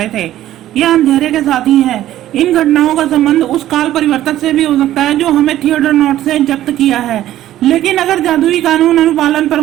थे। यह अंधेरे के साथी है। इन घटनाओं का संबंध उस काल परिवर्तक से भी हो सकता है जो हमें थिएटर नॉट से जब्त किया है। लेकिन अगर जादुई कानून अनुपालन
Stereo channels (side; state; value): left; quieter; 13.3 dB